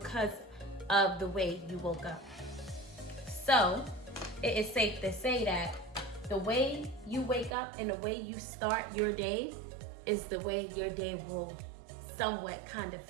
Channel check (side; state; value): left; drops out; at 7.6 s